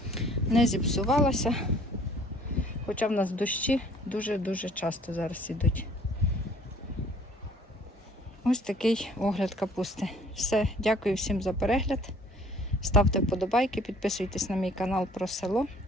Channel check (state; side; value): normal; both; correlation 0.56